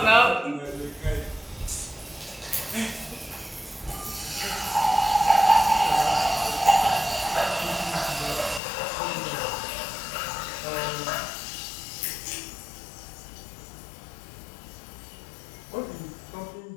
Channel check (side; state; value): right; drops out; at 8.6 s